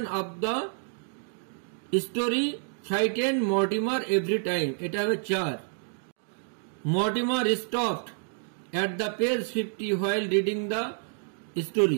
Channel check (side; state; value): left; silent; 59 dB below the other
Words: of the story frighten Mortimer every time, এটা হবে 4। Mortimer stopped at the page 50 while reading the